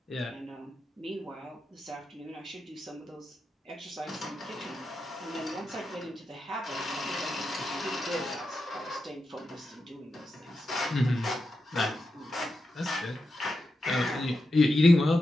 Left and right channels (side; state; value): both; normal; correlation 0.88